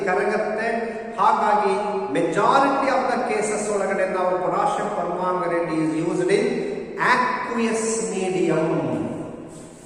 ಕರಗತ್ತೆ. ಹಾಗಾಗಿ ಮೆಜಾರಿಟಿ ಆಫ್ ದ ಕೇಸಸ್ ಒಳಗಡೆ ನಾವು potassium permanganate is used in aqueous medium.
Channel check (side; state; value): both; identical; correlation 1.00